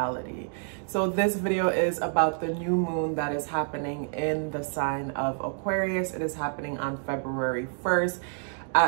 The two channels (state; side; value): silent; left; 59 dB below the other